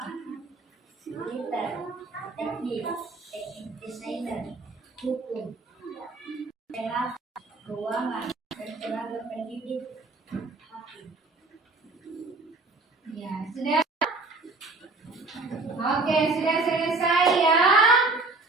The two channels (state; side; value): quieter; left; 3.4 dB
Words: Sudah? Oke, sudah selesai ya.